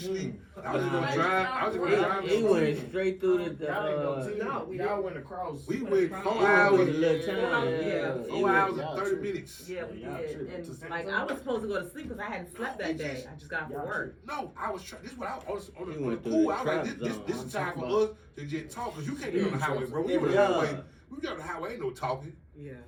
I was just gonna drive. I was just gonna drive. He went straight through the. Y'all ain't no team. No, we Y'all didn't. went across. We went went across. 4 It was hours. a little time. Yeah. 4 hours and 30 minutes. Yeah, we Y'all did. tripping. And like I was supposed to go to sleep because I hadn't slept that day. I just got off Y'all from work. No, I was trying. This is what I was on You the went through pool. the I was like, trap this zone. is time for I'm us to just talk because you can't get on the highway, bro. We on the Yeah. highway. We get on the highway, ain't no talking. Yeah.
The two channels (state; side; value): identical; both; correlation 1.00